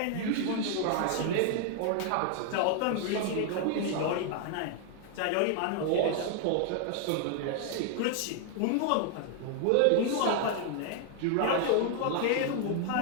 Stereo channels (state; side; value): different; both; correlation 0.00